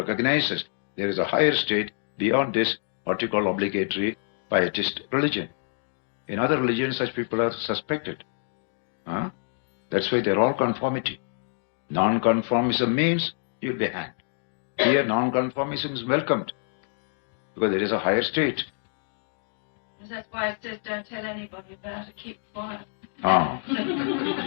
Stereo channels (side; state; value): right; silent; 60 dB below the other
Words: there is a higher state beyond this, what you call obligatory pietist religion. In other religions, such people are suspected. That's why they're all conformity. Non-conformism means you'll be hanged. Here, non-conformism is welcomed because there is a higher state. That's why it says don't tell anybody about it, keep quiet.